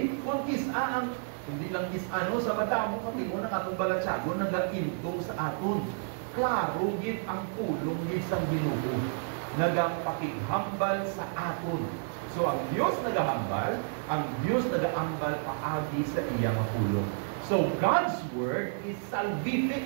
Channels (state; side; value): silent; left; digital silence